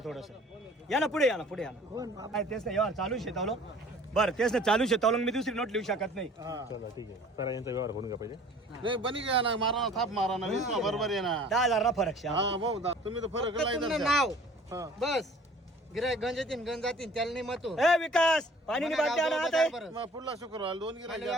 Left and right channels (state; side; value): normal; both; correlation 0.50